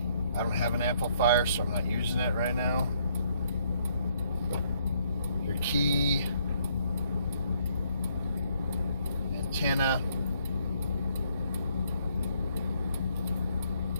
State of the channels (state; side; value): inverted; both; correlation -0.69